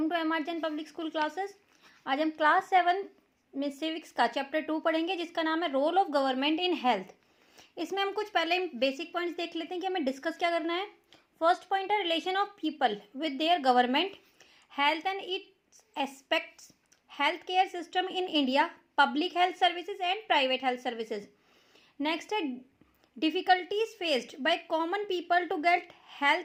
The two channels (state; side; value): identical; both; correlation 1.00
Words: to एमआरजन public school classes. आज हम क्लास 7 में सिविक्स का चैप्टर 2 पढ़ेंगे, जिसका नाम है role of government in health. इसमें हम कुछ पहले बेसिक पॉइंट्स देख लेते हैं कि हमें डिस्कस क्या करना है। फर्स्ट पॉइंट है relation of people with their government, health and its aspects, health care system in India, public health services and private health services. Next है difficulties faced by common people to get